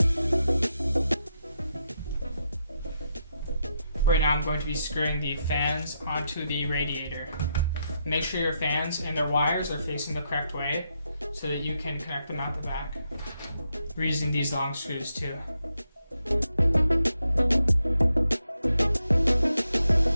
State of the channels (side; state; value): both; inverted; correlation -0.82